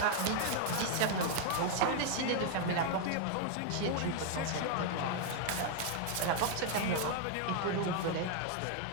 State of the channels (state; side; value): different; both; correlation 0.00